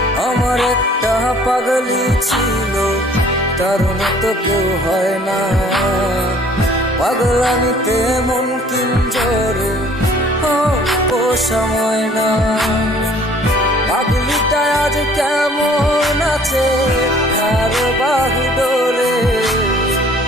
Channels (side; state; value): both; normal; correlation 0.55